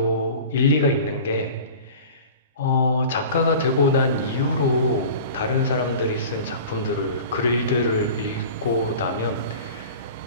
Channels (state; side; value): inverted; both; correlation -0.39